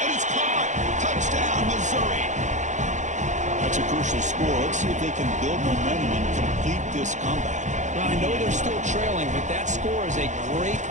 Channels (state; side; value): late; left; 0.35 ms